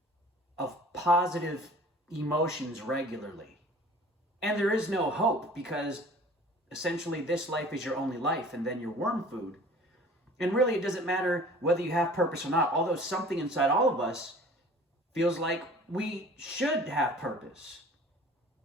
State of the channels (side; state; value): both; normal; correlation 0.46